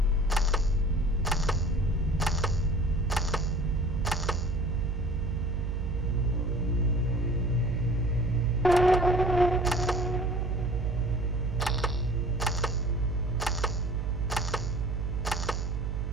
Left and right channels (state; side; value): noise; right; hum, 1 dB below the sound